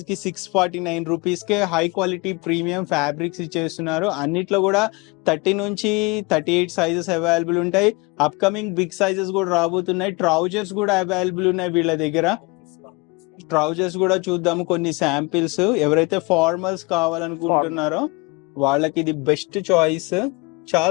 కి 649 రూపీస్ కే హై క్వాలిటీ ప్రీమియం ఫ్యాబ్రిక్స్ ఇచ్చేస్తున్నారు. అన్నిట్లో కూడా 30 నుంచి 38 సైజెస్ అవైలబుల్ ఉంటాయి. అప్కమింగ్ బిగ్ సైజెస్ కూడా రాబోతున్నాయి. ట్రౌజర్స్ కూడా అవైలబుల్ ఉన్నాయి వీళ్ళ దగ్గర. ట్రౌజర్స్ కూడా చూద్దాము కొన్ని శాంపిల్స్. ఎవరైతే ఫార్మల్స్ కావాలనుకుంటున్నారో వాళ్ళకి ఇది బెస్ట్ చాయిస్.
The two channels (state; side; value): quieter; right; 26.5 dB